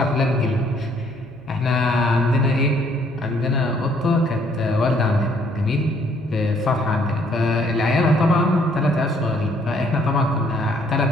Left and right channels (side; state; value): left; noise; hum, 27 dB below the sound